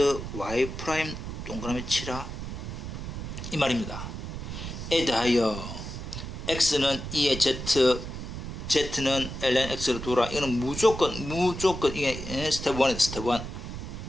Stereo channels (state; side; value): noise; right; rumble, 7 dB below the sound